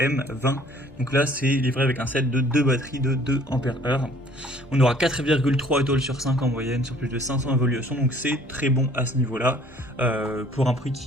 Donc là c'est livré avec un set de 2 batteries de 2 ampères-heure. On aura 4,3 étoiles sur 5 en moyenne sur plus de 500 évolutions, donc c'est très bon à ce niveau-là, pour un prix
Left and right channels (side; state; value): both; normal; correlation 0.56